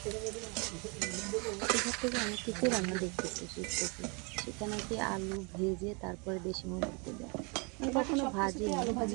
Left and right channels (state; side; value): quieter; left; 32.1 dB